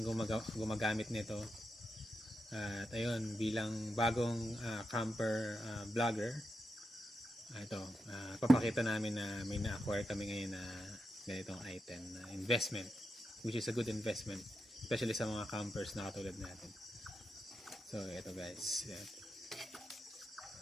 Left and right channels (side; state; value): both; normal; correlation 0.87